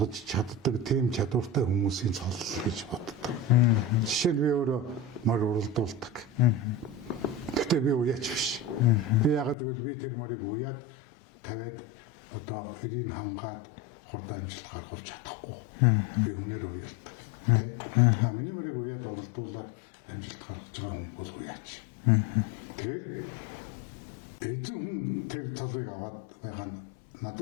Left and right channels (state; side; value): drops out; right; at 9.6 s